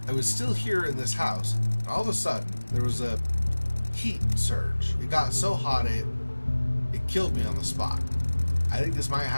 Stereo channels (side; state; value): both; inverted; correlation -1.00